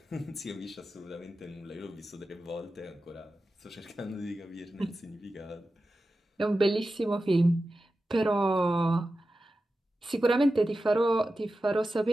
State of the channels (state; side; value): normal; both; correlation 0.93